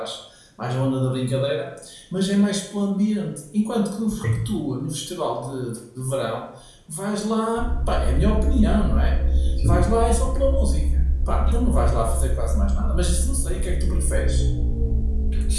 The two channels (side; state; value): both; identical; correlation 1.00